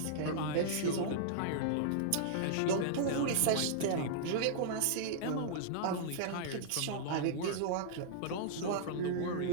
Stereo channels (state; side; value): different; both; correlation -0.02